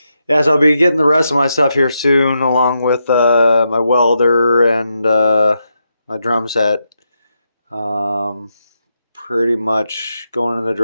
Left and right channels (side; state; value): both; inverted; correlation -0.84